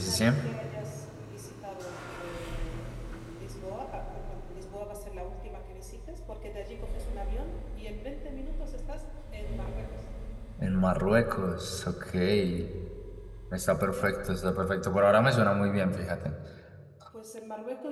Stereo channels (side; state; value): both; identical; correlation 1.00